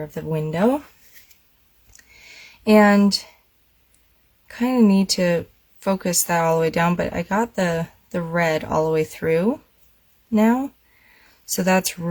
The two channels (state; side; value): identical; both; correlation 1.00